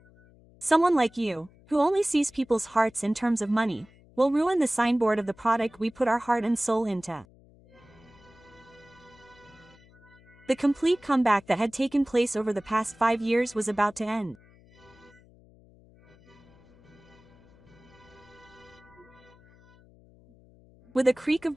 Someone like you, who only sees people's hearts in terms of money, will ruin the signboard of the product we put our heart and soul into. The complete comeback that had taken place over the past 5 years was about to end. With a creak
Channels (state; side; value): noise; left; hum, 27 dB below the sound